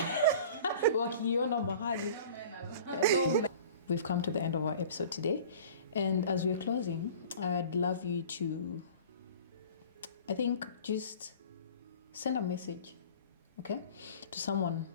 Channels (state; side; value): inverted; both; correlation -0.44